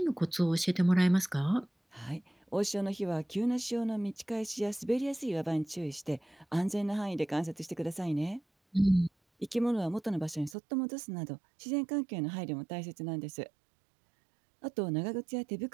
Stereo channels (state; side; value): drops out; left; at 10.6 s